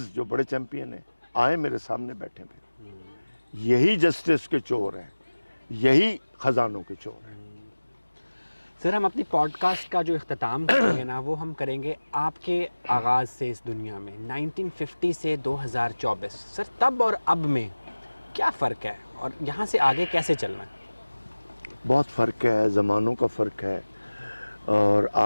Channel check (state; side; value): inverted; both; correlation -1.00